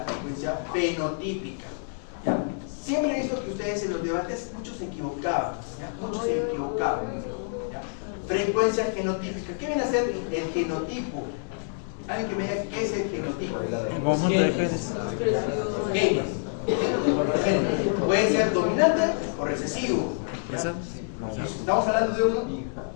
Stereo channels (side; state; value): right; silent; 60 dB below the other